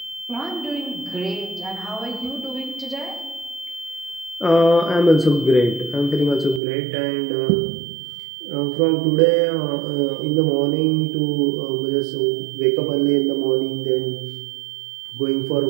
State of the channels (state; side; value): drops out; left; at 6.6 s